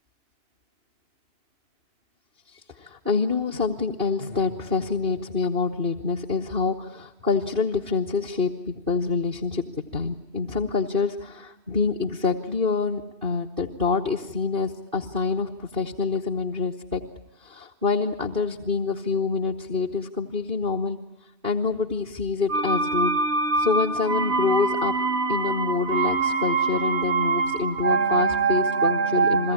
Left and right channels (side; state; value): left; late; 2.5 ms